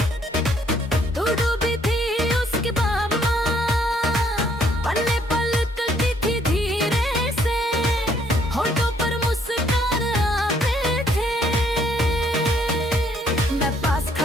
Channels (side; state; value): both; normal; correlation 0.66